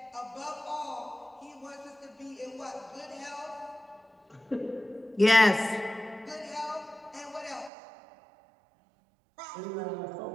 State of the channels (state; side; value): drops out; left; at 7.7 s